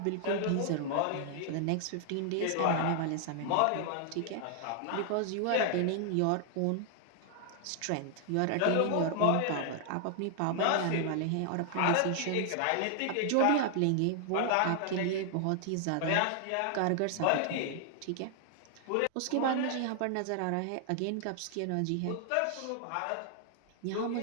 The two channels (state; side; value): different; both; correlation 0.00